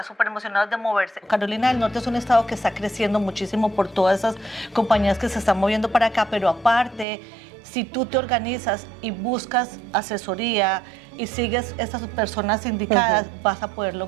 emocionados de moverse. Carolina del Norte es un estado que está creciendo muchísimo por todas esas compañías que se están moviendo para acá, pero aparte, si tú te organizas y buscas asesoría y sigues estas personas indicadas, vas a poder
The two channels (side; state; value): left; drops out; at 7.1 s